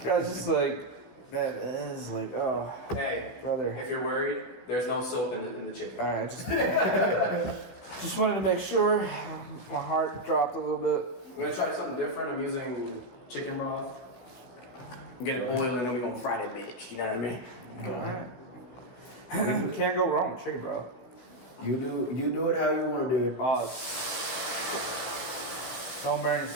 was just like, that is like, oh, Hey, brother. if you're worried, there's no soap in the chicken. All right, just wanted to make sure. My heart dropped a little bit. We're gonna try something different. I'm using chicken broth. Get it boiled and then we're gonna fry that bitch. You know what I mean? Go ahead. Can't go wrong with chicken, bro. You do it how you want to do it. Oh, don't burn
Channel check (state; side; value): late; right; 16 ms